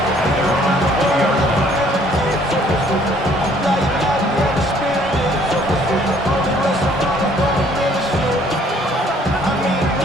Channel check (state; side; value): normal; both; correlation 0.60